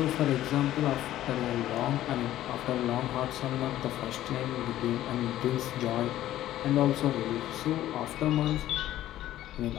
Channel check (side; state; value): right; quieter; 13.5 dB